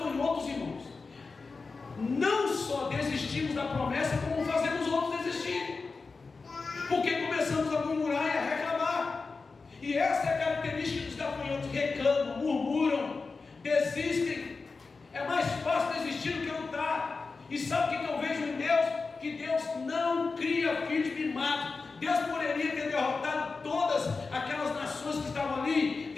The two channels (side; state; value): right; quieter; 4.3 dB